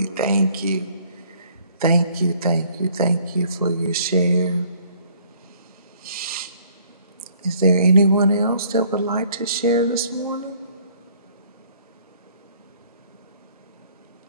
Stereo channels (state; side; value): inverted; both; correlation -0.59